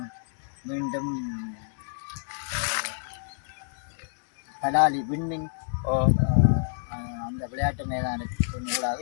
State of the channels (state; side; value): silent; right; digital silence